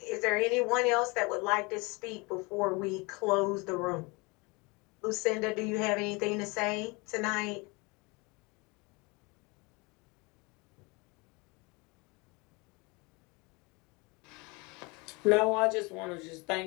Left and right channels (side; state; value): right; quieter; 27.4 dB